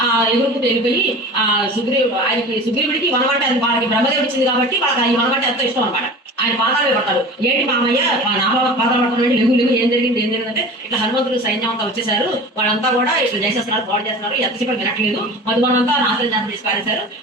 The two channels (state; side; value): normal; both; correlation 0.36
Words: ఎగురుకుంటూ వెళ్ళిపోయి సుగ్రీవుడికి వనం అంటే వాళ్ళకి బ్రహ్మదేవుడు ఇచ్చింది కాబట్టి వాళ్ళకి ఈ వనం అంటే ఎంతో ఇష్టం అనమాట. ఆయన పాదాలు పడతాడు, ఏంటి మామయ్య నా పాదాలు పడుతున్నాడు, లేవు ఏం జరిగింది అంటే ఇట్లా హనుమంతుడు సైన్యం అంతా వచ్చేసారు, వాళ్ళంతా కూడా ఇట్లా చేసేస్తున్నారు, పాడు చేస్తున్నారు, ఎంతసేపు వినట్లేదు, మధువనంతా నాశనం చేసి తీసి పారేశారు,